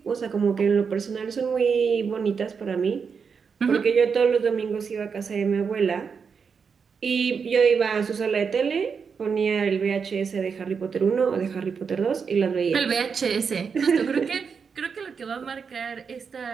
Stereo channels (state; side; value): quieter; left; 6.0 dB